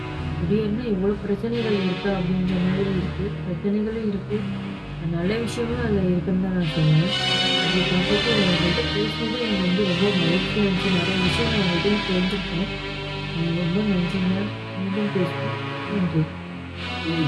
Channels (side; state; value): both; identical; correlation 1.00